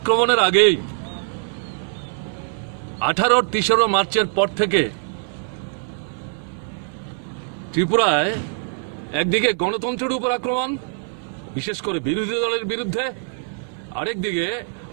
আগেই 18 তেসরা মার্চের পর থেকে ত্রিপুরায় একদিকে গণতন্ত্রের উপর আক্রমণ, বিশেষ করে বিরোধী দলের বিরুদ্ধে, আরেকদিকে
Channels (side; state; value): left; silent; 57 dB below the other